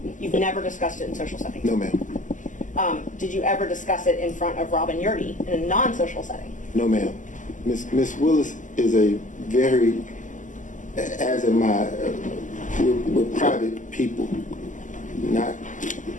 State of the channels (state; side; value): late; right; 0.37 ms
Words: You've never discussed it in social settings? No, ma'am. Did you ever discuss it in front of Robin Yurdy in a non-social setting? No, ma'am. Miss Willis is a very, as am I, we're private people. Not,